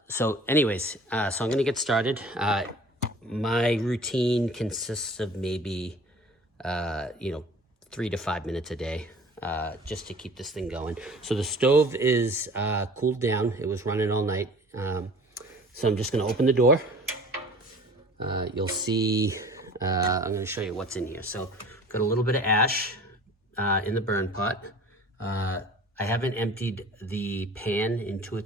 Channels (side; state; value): both; normal; correlation 0.45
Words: So anyways, so I'm going to get started. My routine consists of maybe, 3 to 5 minutes a day. Just to keep this thing going. So the stove is cooled down. It was running all night. So I'm just going to open the door. You'll see, I'm going to show you what's in here. So got a little bit of ash in the burn pot. I haven't emptied the pan in 2 or